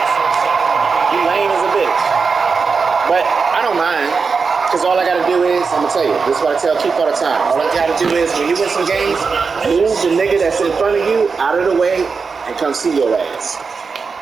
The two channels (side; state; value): left; quieter; 5.0 dB